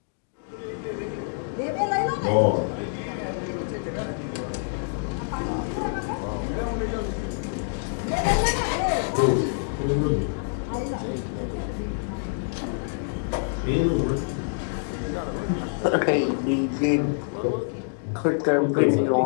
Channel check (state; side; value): silent; right; digital silence